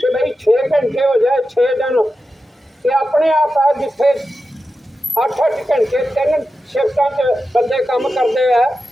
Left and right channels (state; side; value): normal; both; correlation 0.91